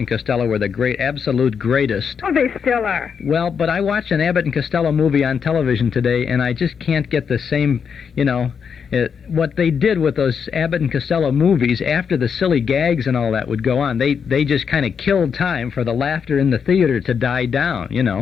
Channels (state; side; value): quieter; right; 6.7 dB